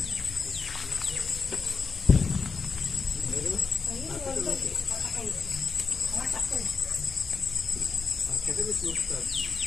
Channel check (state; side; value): quieter; right; 4.9 dB